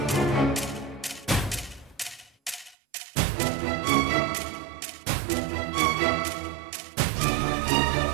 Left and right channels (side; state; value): left; drops out; at 2.8 s